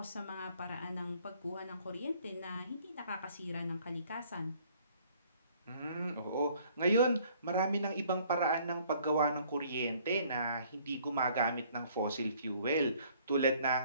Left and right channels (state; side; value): inverted; both; correlation -0.60